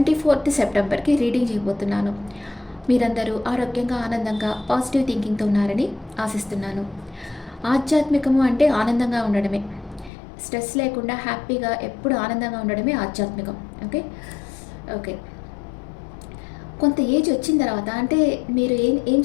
సెప్టెంబర్కి రీడింగ్ చేయబోతున్నాను. మీరందరూ ఆరోగ్యంగా, ఆనందంగా, పాజిటివ్ థింకింగ్తో ఉన్నారని ఆశిస్తున్నాను. ఆధ్యాత్మికము అంటే ఆనందంగా ఉండడమే. స్ట్రెస్ లేకుండా హ్యాపీగా ఎప్పుడు ఆనందంగా ఉండడమే ఆధ్యాత్మికం. ఓకే ఓకే కొంత ఏజ్ వచ్చిన తర్వాత అంటే మీరు ఏం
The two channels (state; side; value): drops out; right; at 10.1 s